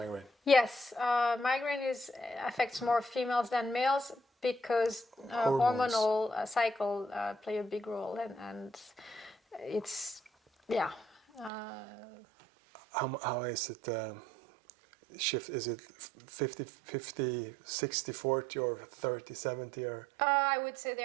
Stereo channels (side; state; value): left; drops out; at 11.5 s